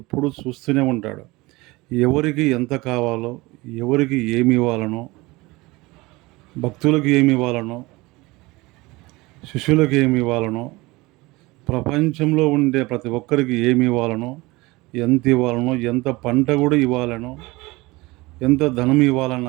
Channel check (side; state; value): left; quieter; 22.0 dB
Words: చూస్తూనే ఉంటాడు. ఎవరికి ఎంత కావాలో, ఎవరికి ఏమి ఇవ్వాలనో, భక్తులకు ఏమి ఇవ్వాలనో, శిష్యులకు ఏమి ఇవ్వాలనో, ప్రపంచంలో ఉండే ప్రతి ఒక్కరికి ఏమి ఇవ్వాలనో, ఎంత ఇవ్వాలనో, ఎంత పంట కూడా ఇవ్వాలనో, ఎంత ధనం